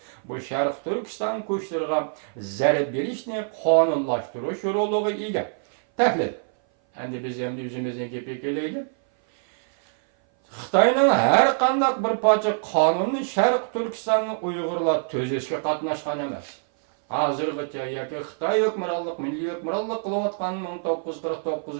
bu Sharq Turkiston kuchlariga zarba berishni qonunlashtirish roliga ega. Tahlil. Endi biz ham o'zimizning gapga kelaylik. Xitoyning har qanday bir parcha qonunni Sharq Turkistonni Uyg'urlar tuzishga qatnashgan emas. Hozirgacha yoki Xitoy hukmronlik, milliy hukmronlik qilayotgan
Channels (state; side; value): silent; left; 58 dB below the other